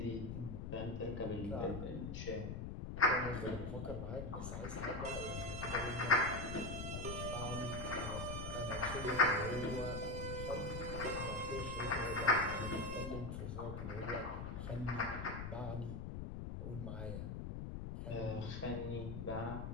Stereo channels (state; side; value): noise; left; rumble, 5 dB below the sound